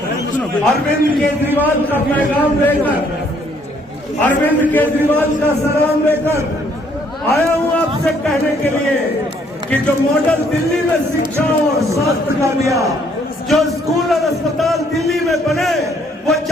अरविंद केजरीवाल का पैगाम लेकर, अरविंद केजरीवाल का सलाम लेकर आया हूं आपसे कहने के लिए कि जो मॉडल दिल्ली में शिक्षा और स्वास्थ्य का दिया, जो स्कूल और अस्पताल दिल्ली में बने, वो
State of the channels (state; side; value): normal; both; correlation 0.66